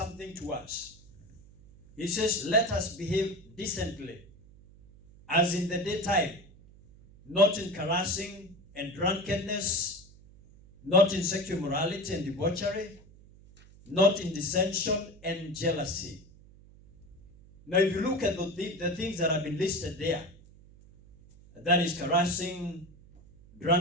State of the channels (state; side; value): noise; right; hum, 23 dB below the sound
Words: to us. He says, "Let us behave decently, as in the daytime, not in carousing and drunkenness, not in sexual morality and debauchery, not in dissension and jealousy." Now, if you look at the things that have been listed there, that is carousing,